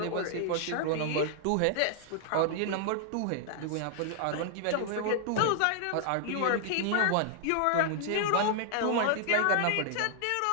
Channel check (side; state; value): both; different; correlation -0.01